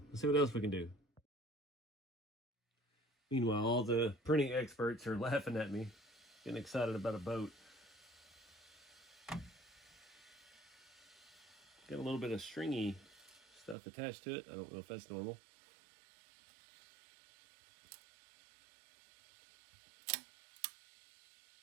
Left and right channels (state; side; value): drops out; left; at 13.8 s